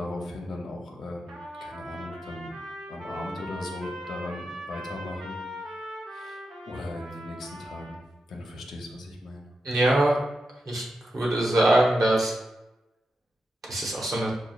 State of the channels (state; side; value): normal; both; correlation 0.87